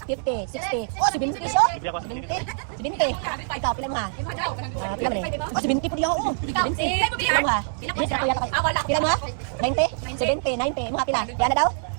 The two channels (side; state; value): left; silent; digital silence